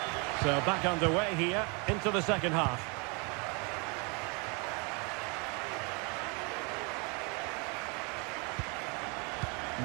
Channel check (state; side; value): quieter; left; 31.8 dB